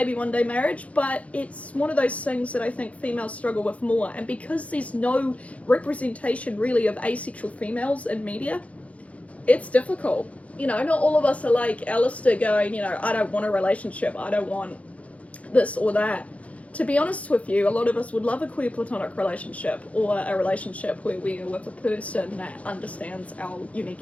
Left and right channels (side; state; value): right; late; 0.065 ms